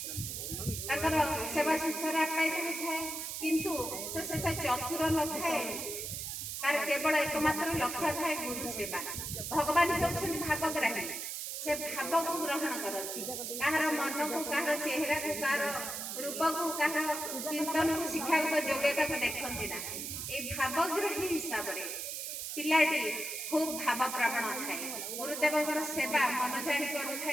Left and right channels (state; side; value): noise; right; hiss, 5 dB below the sound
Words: सेवा शुश्रूषा पाई था किंतु से चतुर न थाए तार केवल एकमात्र लक्ष्य थाए गुरु सेवा। भगवान होउछन भावग्राही से भाव को ग्रहण करती कहार मन को कहार चेहरा को कहार रूप को कहार चिंतन को शिक्षागत योग्यता को देखती ना। ये भावग्राही हिसाब से पिलाटी खूब भाव प्रवण थाए गुरुदेव सेवा मन जाणी